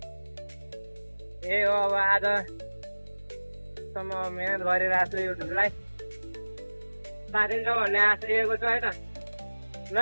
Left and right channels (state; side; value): inverted; both; correlation -1.00